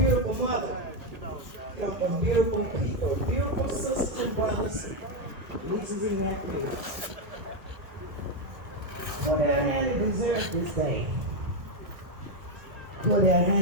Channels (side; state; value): left; late; 1.4 ms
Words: mother. Come from beautiful people, beautiful sisters and brothers, nieces and nephews. Cordale Handy deserves this day. Cordale